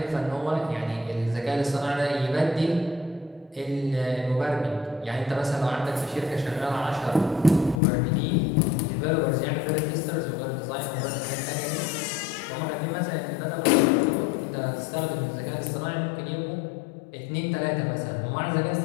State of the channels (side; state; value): right; drops out; at 7.8 s